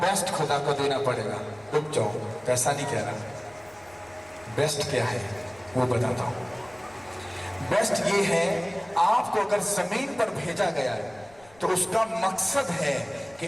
बेस्ट खुदा को देना पड़ेगा। रुक जाओ, पैसा नहीं कह रहा, बेस्ट क्या है वो बताता हूं। बेस्ट ये है, आपको अगर जमीन पर भेजा गया है तो उसका मकसद है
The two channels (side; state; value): left; noise; rumble, 27 dB below the sound